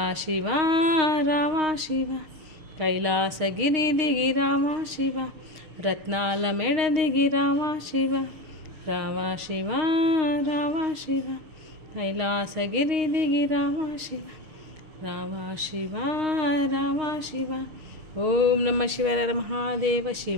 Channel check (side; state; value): left; late; 6.4 ms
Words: शिवा रामा शिवा कैलासगिरिदिगि रामा शिवा रत्नालमेळदिगि रामा शिवा रामा शिवा रामा शिवा कैलासगिरिदिगि रामा शिवा रामा शिवा रामा शिवा। ओम नमः शिवाय महादेव